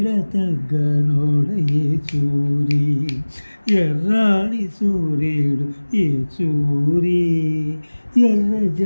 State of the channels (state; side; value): inverted; both; correlation -1.00